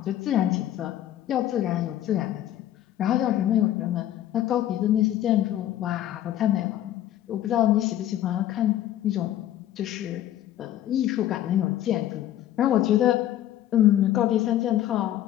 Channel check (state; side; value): quieter; right; 12.4 dB